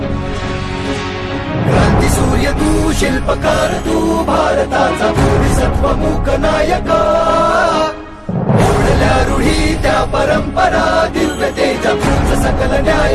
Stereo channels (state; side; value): identical; both; correlation 1.00